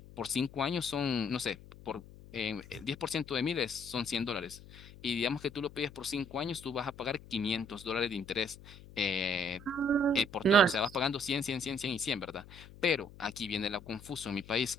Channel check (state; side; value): noise; left; hum, 18 dB below the sound